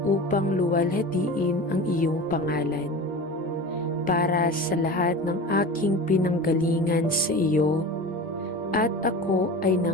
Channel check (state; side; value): normal; both; correlation 0.32